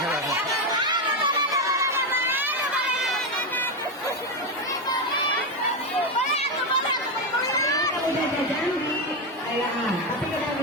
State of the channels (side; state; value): both; normal; correlation 0.09